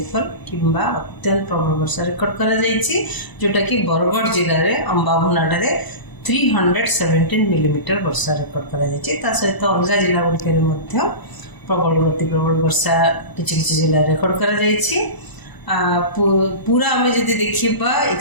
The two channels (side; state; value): right; late; 1.0 ms